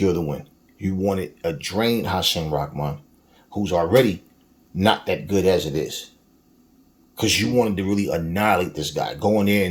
the win. You wanted a drained Hasim Rahman, who's already not that good as it is. Because you wanted to really annihilate this guy. Going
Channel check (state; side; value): identical; both; correlation 1.00